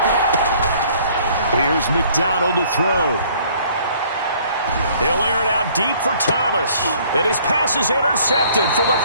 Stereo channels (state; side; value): inverted; both; correlation -0.58